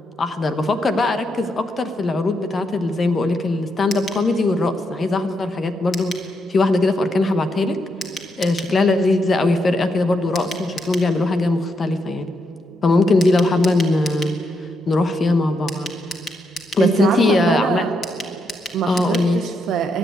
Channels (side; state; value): both; normal; correlation 0.81